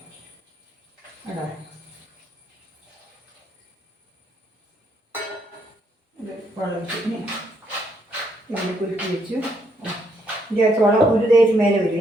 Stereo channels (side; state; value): both; normal; correlation 0.73